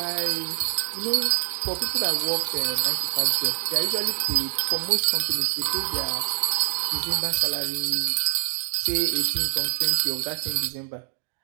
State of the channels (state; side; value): silent; left; digital silence